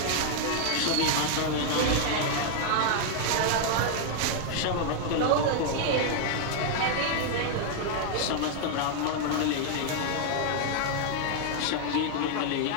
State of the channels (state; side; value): different; both; correlation 0.00